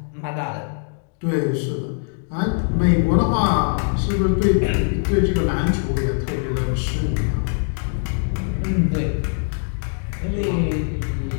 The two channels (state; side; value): silent; right; digital silence